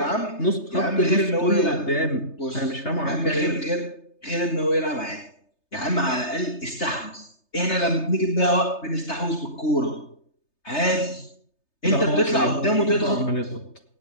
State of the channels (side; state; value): right; late; 3.3 ms